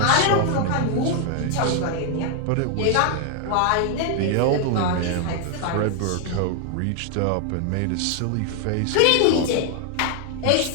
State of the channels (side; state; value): both; different; correlation 0.00